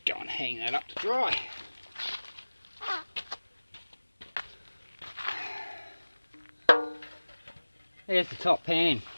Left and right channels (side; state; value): both; inverted; correlation -1.00